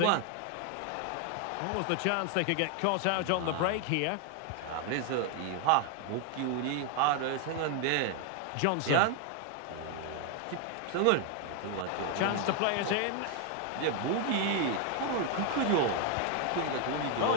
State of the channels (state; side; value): different; both; correlation 0.00